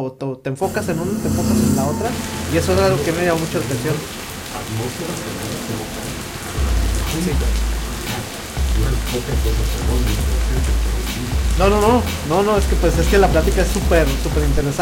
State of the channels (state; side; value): identical; both; correlation 1.00